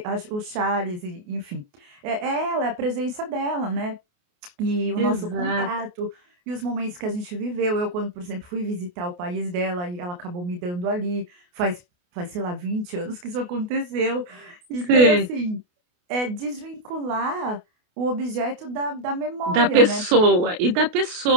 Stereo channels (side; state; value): left; late; 28 ms